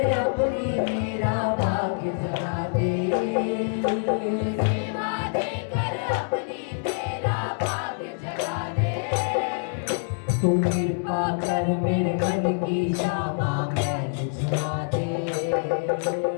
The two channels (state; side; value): silent; right; digital silence